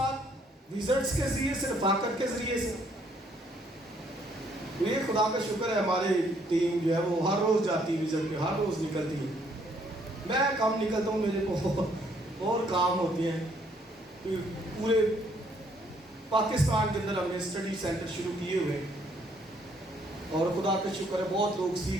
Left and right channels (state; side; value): normal; both; correlation 0.67